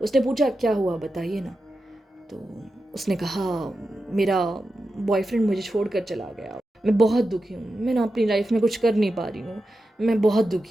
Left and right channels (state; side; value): normal; both; correlation 0.90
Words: उसने पूछा, क्या हुआ बताइए ना। तो उसने कहा, मेरा बॉयफ्रेंड मुझे छोड़कर चला गया, मैं बहुत दुखी हूँ, मैं ना अपनी लाइफ में कुछ कर नहीं पा रही हूँ, मैं बहुत